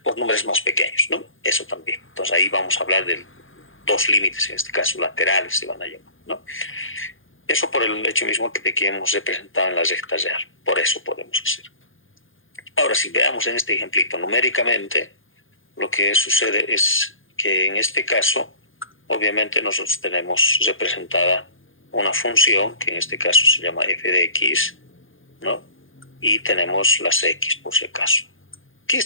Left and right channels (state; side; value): late; right; 0.58 ms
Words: por números más pequeños, ¿no? Eso también. Entonces ahí vamos a hablar de dos límites, en este caso laterales se van a llamar, ¿no? Eso por el hecho mismo de que hemos representado en la recta real. Por eso podemos hacer. Ahora, si veamos en este ejemplito numéricamente, lo que sucede es que en este caso, obviamente nosotros tenemos representada una función, que en este caso se llama f de x, ¿no? Y tenemos las x por si acaso. ¿Qué